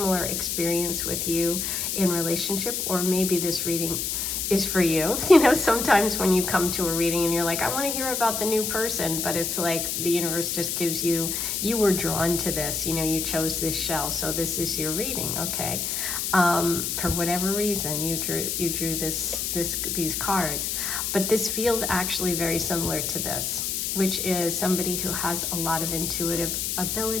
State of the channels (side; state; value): left; noise; hiss, 1 dB below the sound